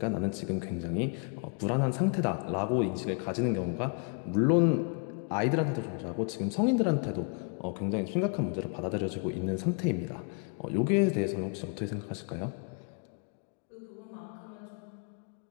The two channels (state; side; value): quieter; right; 39.7 dB